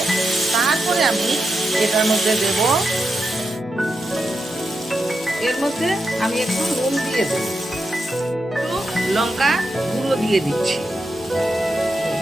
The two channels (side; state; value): both; normal; correlation 0.86